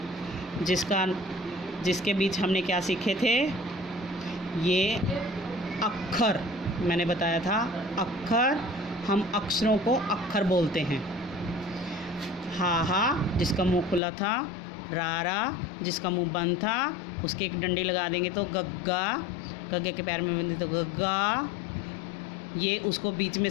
जिसके बीच हमने क्या सीखे थे। ये अक्षर मैंने बताया था। अक्षर, हम अक्षरों को अक्षर बोलते हैं। हा हा जिसका मुंह खुला था, रा जिसका मुंह बंद था, उसके एक डंडी लगा देंगे तो गग्गा, गग्गे के पैर में बिंदी तो गग्गा। ये उसको बीच में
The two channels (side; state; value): right; drops out; at 14.0 s